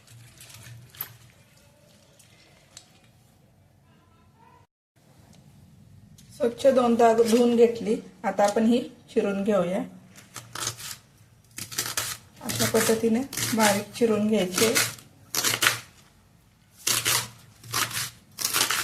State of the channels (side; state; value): both; identical; correlation 1.00